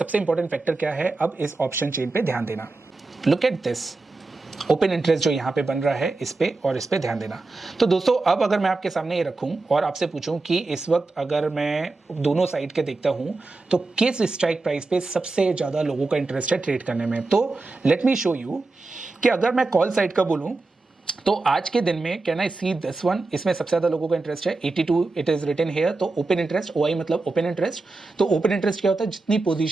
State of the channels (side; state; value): left; quieter; 3.4 dB